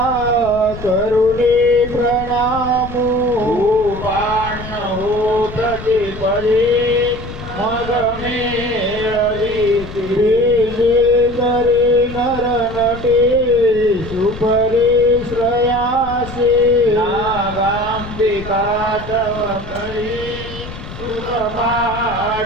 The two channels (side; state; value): left; noise; rumble, 12 dB below the sound